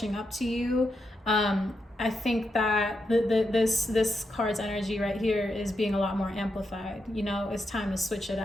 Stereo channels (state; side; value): normal; both; correlation 0.84